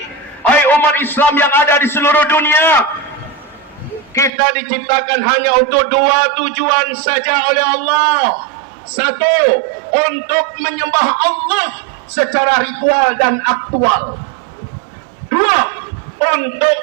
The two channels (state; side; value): drops out; left; at 4.3 s